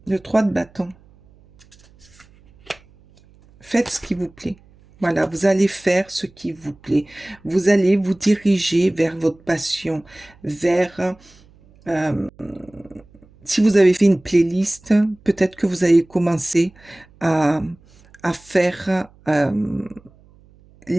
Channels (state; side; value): noise; right; hum, 28 dB below the sound